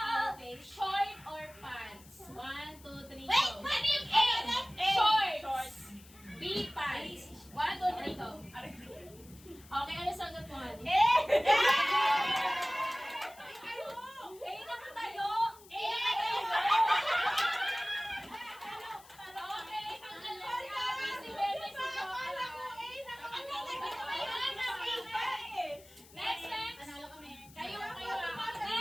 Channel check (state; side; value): noise; left; hiss, 22 dB below the sound